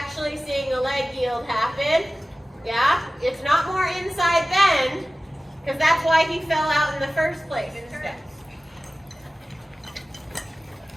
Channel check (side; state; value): both; normal; correlation 0.97